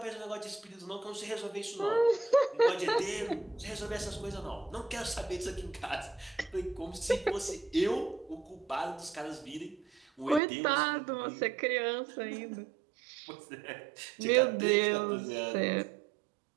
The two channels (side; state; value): left; drops out; at 10.4 s